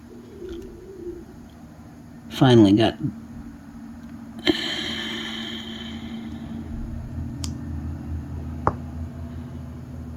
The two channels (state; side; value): identical; both; correlation 1.00